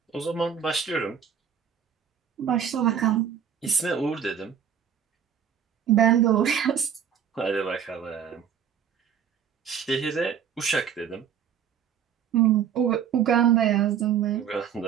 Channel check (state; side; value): quieter; left; 8.2 dB